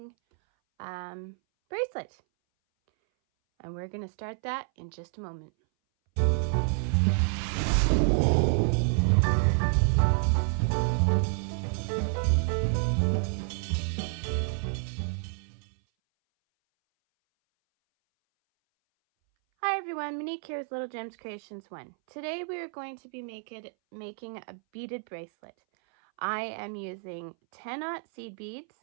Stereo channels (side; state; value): left; silent; 58 dB below the other